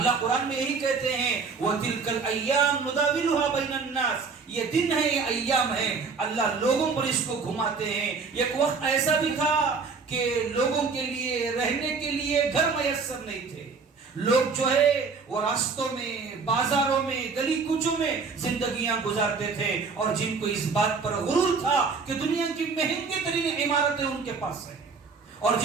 قرآن میں یہی کہتے ہیں وَتِلْكَ الْأَيَّامُ نُدَاوِلُهَا بَيْنَ النَّاسِ، یہ دن ہے، یہ ایام ہے، اللہ لوگوں پر اس کو گھماتے ہیں. ایک وقت ایسا بھی تھا کہ لوگوں کے لیے رہنے کے لیے گھر میسر نہیں تھے. لوگ جو ہے وہ راستوں میں، بازاروں میں، گلی کوچوں میں زندگیاں گزارتے تھے، اور جن کو اس بات پر غرور تھا کہ دنیا کی مہنگی ترین عمارتیں ان کے پاس ہیں، اور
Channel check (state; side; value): quieter; left; 4.9 dB